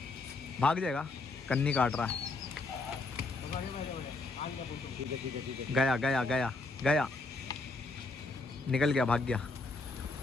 भाग जाएगा, कन्नी काट रहा है। गया निकल गया, भाग गया।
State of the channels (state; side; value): quieter; right; 3.4 dB